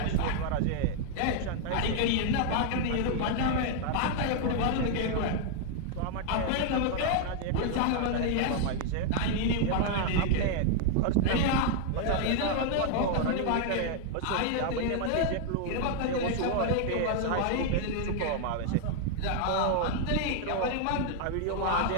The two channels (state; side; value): different; both; correlation 0.00